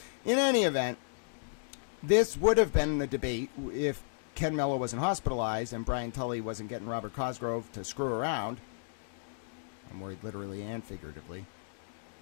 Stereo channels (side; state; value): right; silent; digital silence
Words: In any event, this would have been the debate if Ken Mello wasn't hospitalized and Brian Tully wasn't getting Robert Cosgrove to screw around. I'm worried literally and figuratively,